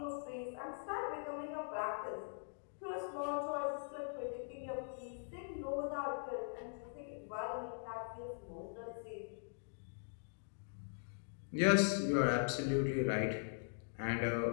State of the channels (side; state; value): right; silent; digital silence